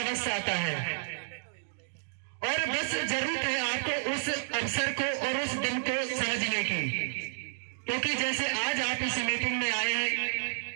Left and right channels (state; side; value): silent; left; digital silence